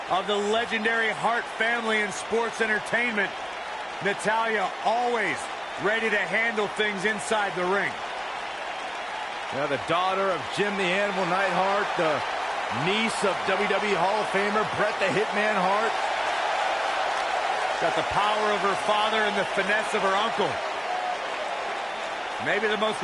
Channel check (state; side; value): identical; both; correlation 1.00